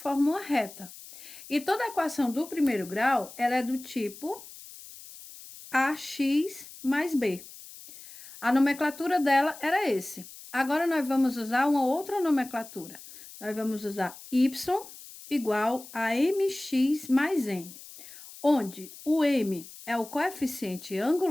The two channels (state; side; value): noise; left; hiss, 17 dB below the sound